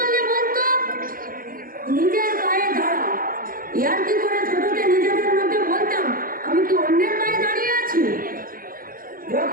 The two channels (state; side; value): late; left; 0.41 ms